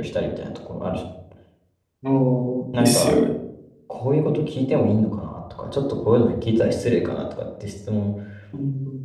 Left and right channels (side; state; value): both; identical; correlation 1.00